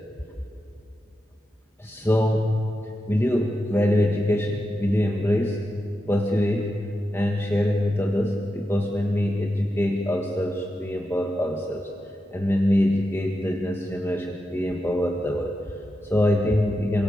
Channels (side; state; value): both; normal; correlation 0.88